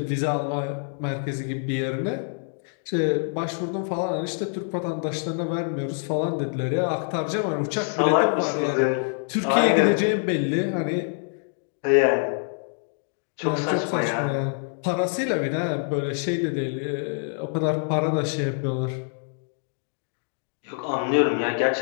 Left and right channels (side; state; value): right; silent; 61 dB below the other